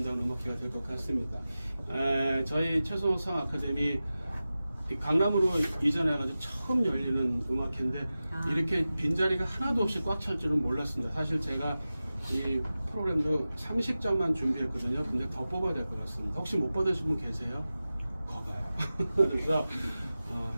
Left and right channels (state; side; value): inverted; both; correlation -0.95